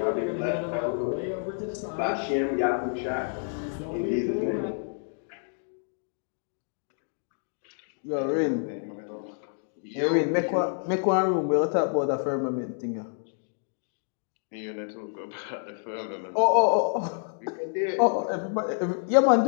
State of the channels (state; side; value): silent; right; digital silence